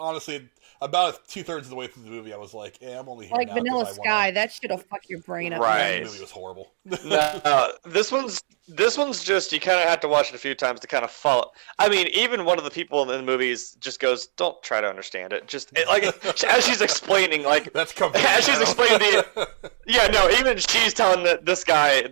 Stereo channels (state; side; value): silent; left; digital silence